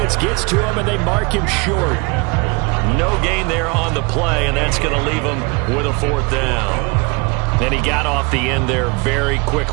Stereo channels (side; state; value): left; quieter; 29.2 dB